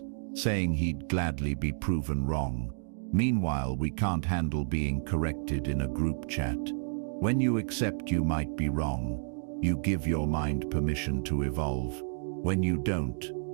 saying he'd gladly be proven wrong. Meanwhile, we can't handle being corrected in a group chat. When you accept you might be wrong, you give your mind permission to evolve. When you don't,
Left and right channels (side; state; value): left; silent; digital silence